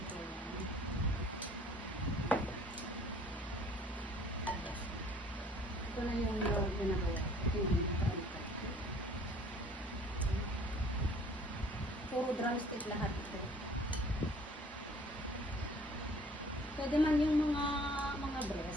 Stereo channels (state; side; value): normal; both; correlation 0.54